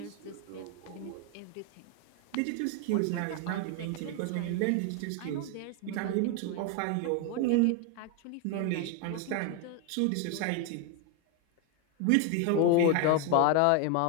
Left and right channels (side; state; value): both; different; correlation 0.01